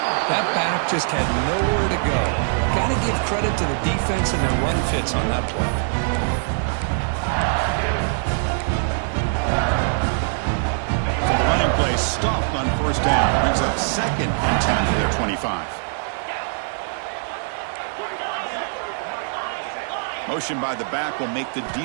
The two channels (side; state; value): left; silent; 55 dB below the other